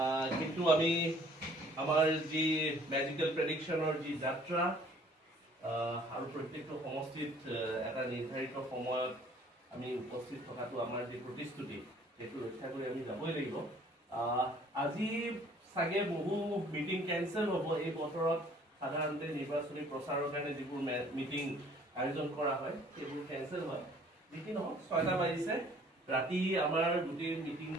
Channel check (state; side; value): normal; both; correlation 0.56